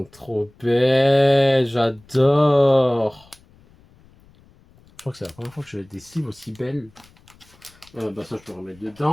trop belles. J'adore. Je crois que c'est la première fois que je fais des sleeves aussi belles. Bah ça, je peux remettre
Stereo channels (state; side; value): noise; left; rumble, 29 dB below the sound